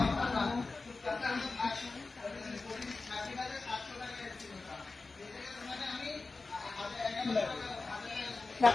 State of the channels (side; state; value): right; quieter; 3.8 dB